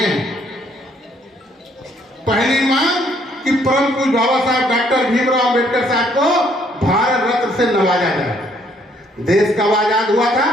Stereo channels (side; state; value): both; normal; correlation 0.66